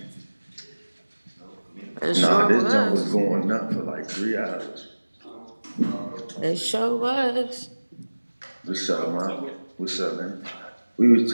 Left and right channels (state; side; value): inverted; both; correlation -1.00